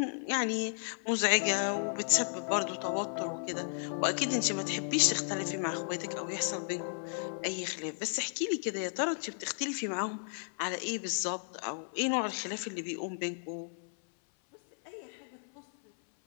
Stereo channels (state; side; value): silent; right; 55 dB below the other